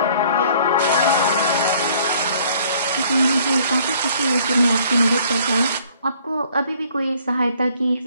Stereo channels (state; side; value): inverted; both; correlation -0.59